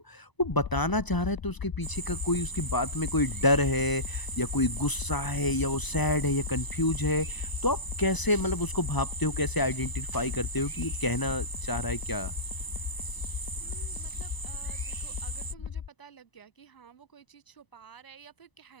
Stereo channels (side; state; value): right; late; 1.0 ms